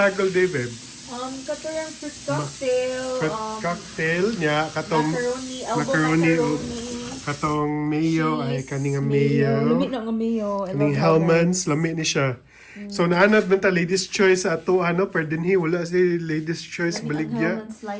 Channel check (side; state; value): both; identical; correlation 1.00